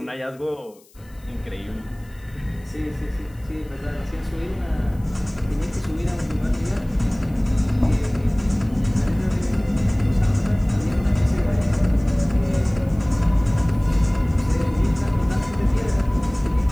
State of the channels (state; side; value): noise; left; hiss, 29 dB below the sound